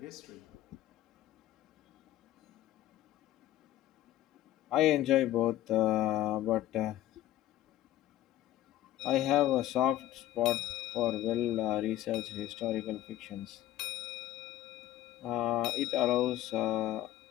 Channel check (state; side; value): quieter; right; 13.3 dB